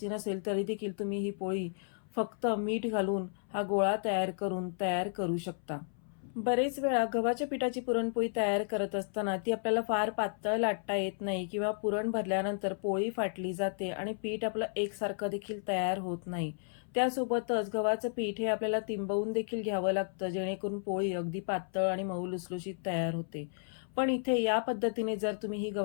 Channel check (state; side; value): silent; right; 56 dB below the other